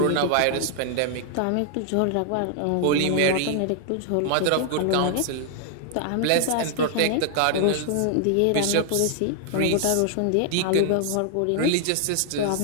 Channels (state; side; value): different; both; correlation 0.00